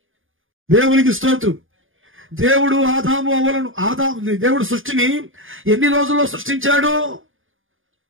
దేవునికి స్తోత్రం. దేవుడు దేవుడు సృష్టిని ఎన్ని రోజుల్లో సృష్టించాడు?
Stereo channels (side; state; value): left; late; 0.58 ms